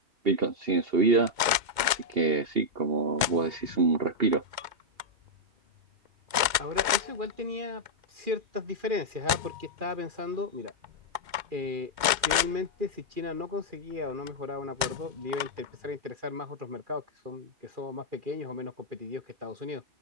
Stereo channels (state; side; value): late; left; 2.1 ms